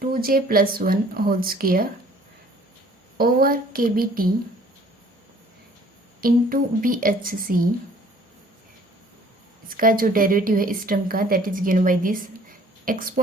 2J plus one whole square over KBT into BHC। इसका जो derivative है इस term का, that is given by this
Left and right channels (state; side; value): normal; both; correlation 0.55